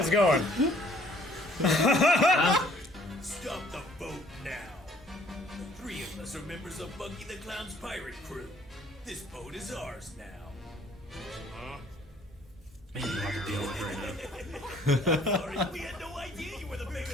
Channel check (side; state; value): both; normal; correlation 0.59